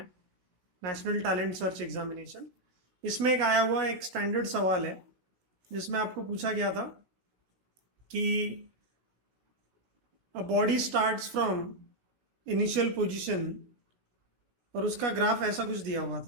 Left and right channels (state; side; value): late; left; 16 ms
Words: नेशनल टैलेंट सर्च एग्जामिनेशन, इसमें एक आया हुआ एक स्टैंडर्ड सवाल है जिसमें आपको पूछा गया था कि a body starts from initial position, और उसका ग्राफ ऐसा कुछ दिया हुआ